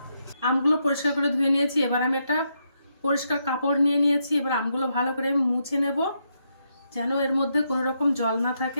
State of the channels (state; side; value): inverted; both; correlation -0.80